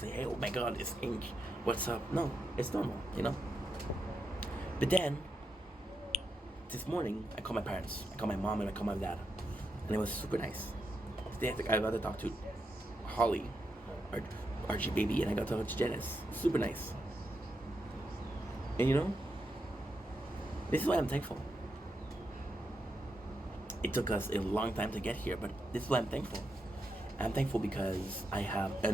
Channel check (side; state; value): both; normal; correlation 0.85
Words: hey, oh my god, it's Ink. What's up? No, it's normal, you know? But then, this morning, I called my parents. I called my mom and I called my dad. And it was super nice. I got to talk to Holly, Archie baby, and I got to talk to Janice. Super nice. And you know, this is why I'm thankful. It took us a long time to get here, but this is why I'm thankful. I'm thankful because I have